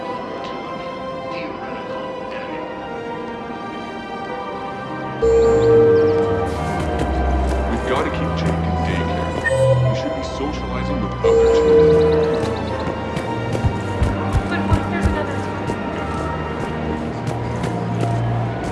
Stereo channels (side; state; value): both; identical; correlation 1.00